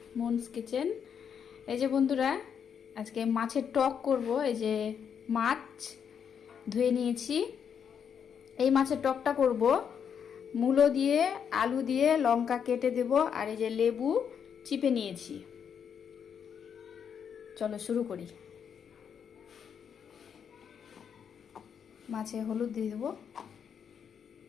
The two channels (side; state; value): right; quieter; 7.6 dB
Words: মুনস কিচেন। এই যে বন্ধুরা, আজকে মাছের টক করব। এই যে মাছ ধুয়ে নিয়েছি, এই মাছের টকটা করব। মূলো দিয়ে, আলু দিয়ে, লঙ্কা কেটে দেব, আর এই যে লেবু চিপে নিয়েছি। চলো শুরু করি। মাছে হলুদ দিয়ে দেবো,